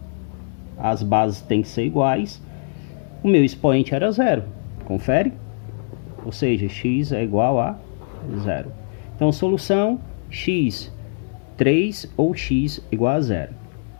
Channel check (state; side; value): silent; right; 64 dB below the other